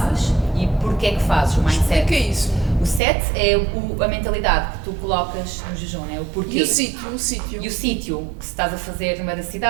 e porque é que fazes o mindset. O que é isso? O set é a mentalidade que tu colocas no jejum, é o porquê. E o sítio? E o sítio que se estás a fazer no meio da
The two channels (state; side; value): drops out; left; at 3.0 s